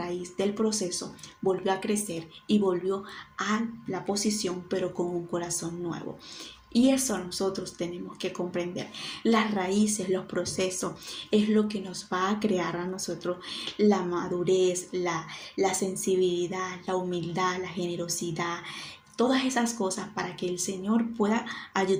del proceso volvió a crecer y volvió a la posición, pero con un corazón nuevo. Y eso nosotros tenemos que comprender. Las raíces, los procesos, es lo que nos va a crear a nosotros la madurez, la sensibilidad, la humildad, la generosidad, todas esas cosas para que el Señor pueda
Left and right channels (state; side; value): identical; both; correlation 1.00